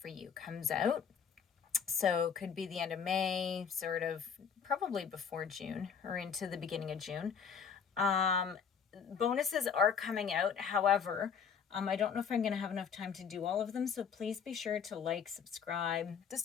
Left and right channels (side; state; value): right; quieter; 6.8 dB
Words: you comes out. So could be the end of May, sort of probably before June or into the beginning of June. Bonuses are coming out. However, I don't know if I'm going to have enough time to do all of them. So please be sure to like, subscribe,